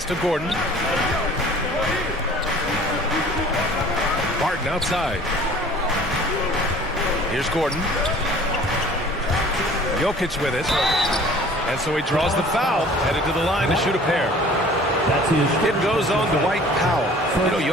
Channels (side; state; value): both; normal; correlation 0.49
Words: to Gordon. Barton outside. Here's Gordon. Jokic with it. And so he draws the foul, headed to the line to shoot a pair. It goes on Dwight Powell. You know,